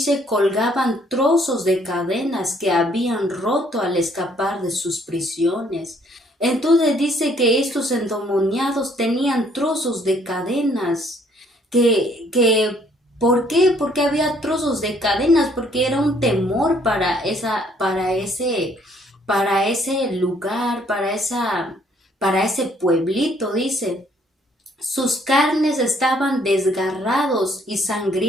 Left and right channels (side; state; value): both; normal; correlation 0.64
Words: colgaban trozos de cadenas que habían roto al escapar de sus prisiones. Entonces dice que estos endemoniados tenían trozos de cadenas. ¿Por qué? Porque había trozos de cadenas, porque era un temor para ese lugar, para ese pueblito, dice. Sus carnes estaban desgarrados y